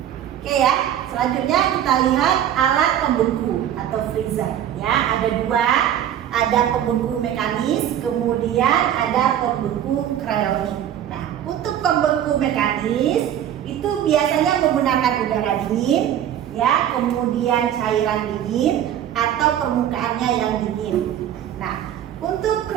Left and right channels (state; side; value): quieter; left; 10.6 dB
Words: Oke ya. Selanjutnya kita lihat alat pembeku atau freezer. Ya, ada dua. Ada pembeku mekanis, kemudian ada pembeku krionik. Nah, untuk pembeku mekanis itu biasanya menggunakan udara dingin, ya, kemudian cairan dingin atau permukaannya yang dingin. Nah, untuk